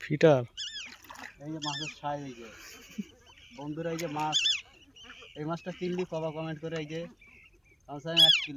ফিটার, এই যে মাছের সাইজ। এই যে বন্ধুরা, এই যে মাছ, এই মাছটা কিনলি কবা কমেন্ট করে। এই যে কমসে কম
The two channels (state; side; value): identical; both; correlation 1.00